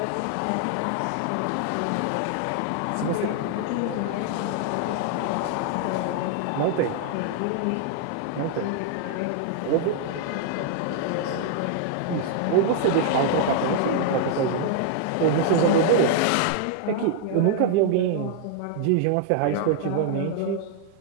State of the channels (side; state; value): both; different; correlation -0.01